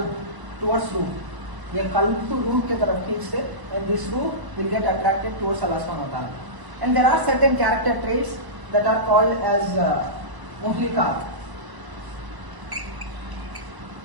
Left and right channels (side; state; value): left; late; 1.0 ms